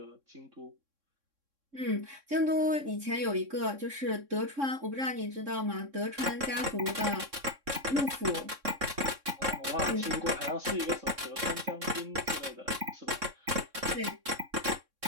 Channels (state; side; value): late; left; 3.6 ms